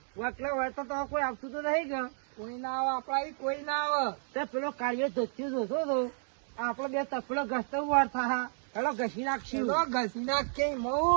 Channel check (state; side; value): silent; left; digital silence